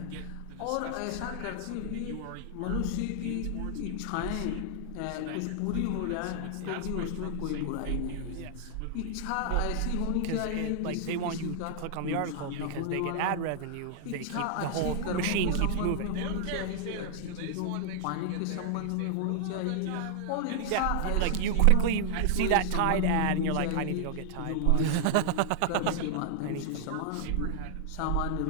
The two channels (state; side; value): different; both; correlation -0.01